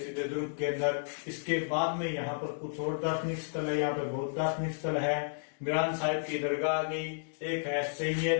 दुर्ग के अंदर। इसके बाद में यहाँ पर कुछ और दार्शनिक स्थल है। यहाँ पर बहुत दार्शनिक स्थल है। मीरान साहिब की दरगाह आ गई, एक है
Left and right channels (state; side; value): silent; right; digital silence